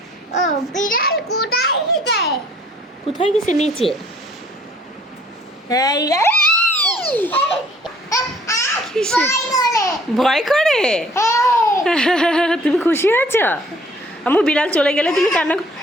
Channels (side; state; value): both; normal; correlation 0.57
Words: ও বিড়াল কোথায় গেছে? কোথায় গেছে? নিচে। এই কিসে? ভয় করে? তুমি খুশি হয়েছো? আম্মু বিড়াল চলে গেলে তুমি কান্না